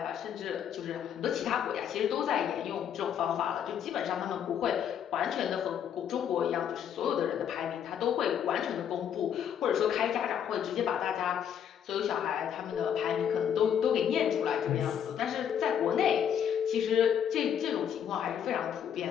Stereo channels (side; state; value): right; quieter; 8.8 dB